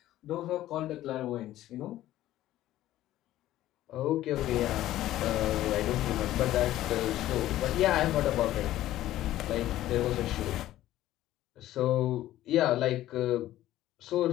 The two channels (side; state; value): right; quieter; 14.2 dB